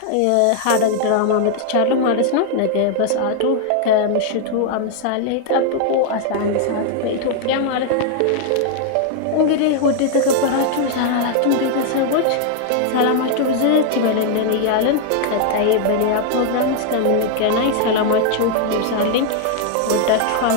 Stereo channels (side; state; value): both; different; correlation 0.00